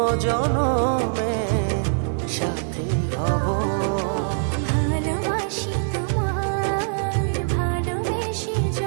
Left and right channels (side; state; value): left; silent; digital silence